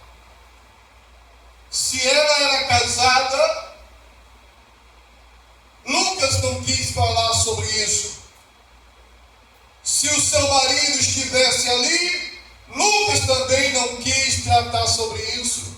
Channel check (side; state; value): both; identical; correlation 1.00